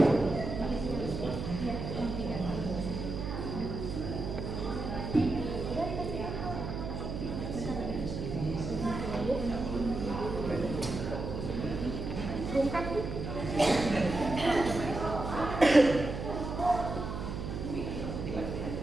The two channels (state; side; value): noise; right; hum, 5 dB below the sound